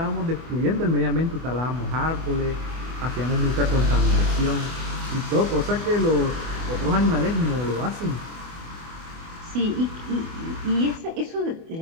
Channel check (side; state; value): left; late; 24 ms